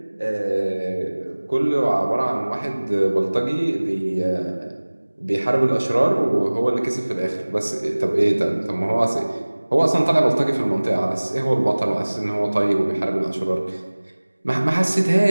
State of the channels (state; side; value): inverted; both; correlation -1.00